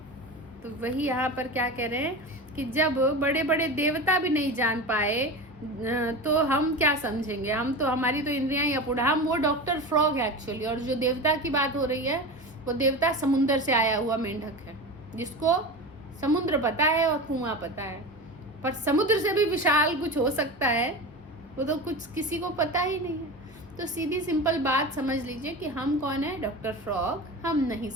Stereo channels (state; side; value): normal; both; correlation 0.27